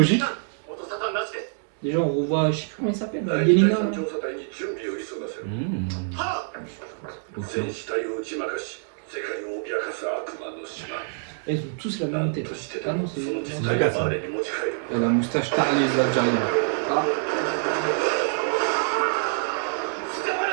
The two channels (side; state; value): left; silent; digital silence